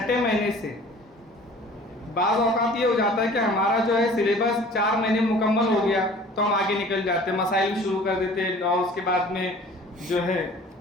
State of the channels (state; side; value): normal; both; correlation 0.48